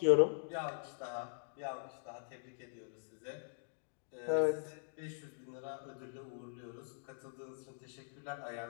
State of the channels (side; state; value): right; silent; digital silence